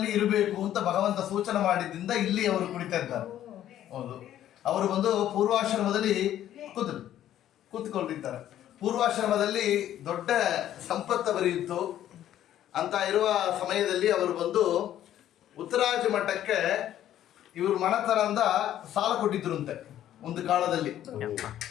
ಇರಬೇಕು ಅಂತ ಭಗವಂತ ಸೂಚನೆ ಮಾಡಿದ್ದರಿಂದ ಇಲ್ಲಿ ಅವರು ಕುಳಿತಾ ಇದ್ದಾರೆ. ಹೌದು, ಅವರು ಬಂದು ಪೂರ್ವಾಶ್ರಮದಲ್ಲಿ ಕೂತ್ಕೊಂಡಿದ್ದಾರೆ. ಪೂರ್ವಾಶ್ರಮದಲ್ಲಿ ದೊಡ್ಡ ಸಂಪತ್ತು ಬರೆಯಿತು ಅಂತ ಇರುವ ಸಮಯದಲ್ಲಿ ಅವರು ಬಂದು ಉತ್ತರಾಜ ಮಠಕ್ಕೆ ಇವರು ಮಣತನದಿಂದ ಸಾಲ ಕೊಟ್ಟಿದ್ರಂತೆ. ಒಂದು ಕಾಲದಲ್ಲಿ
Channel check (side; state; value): right; quieter; 11.8 dB